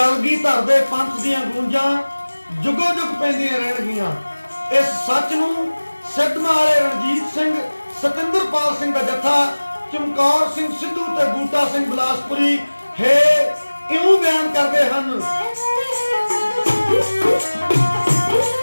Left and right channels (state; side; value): inverted; both; correlation -1.00